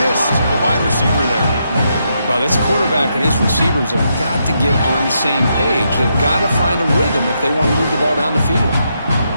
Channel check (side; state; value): both; inverted; correlation -0.80